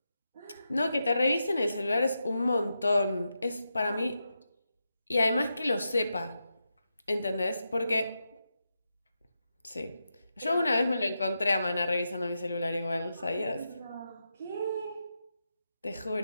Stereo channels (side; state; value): both; inverted; correlation -0.87